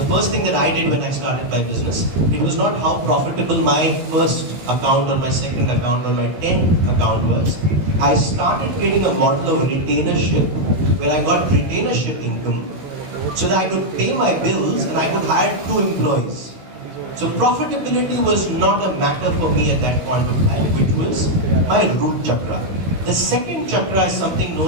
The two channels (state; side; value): late; left; 16 ms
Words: first thing that I did when I started my business, it was not how profitable my first account or my second account or my 10th account was. I started creating a model of retainership where I got retainership income so that I could pay my bills and I could hire 2 employees. So profitability was not a matter for me at that point of time, which was my root chakra. The second chakra is something